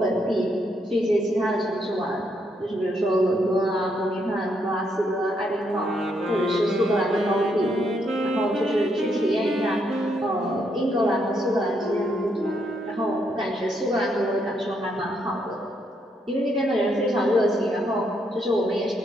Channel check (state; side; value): normal; both; correlation 0.76